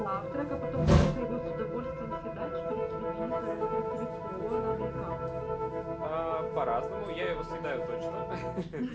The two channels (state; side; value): identical; both; correlation 1.00